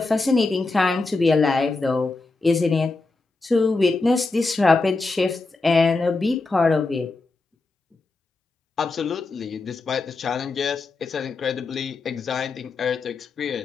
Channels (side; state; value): right; quieter; 3.6 dB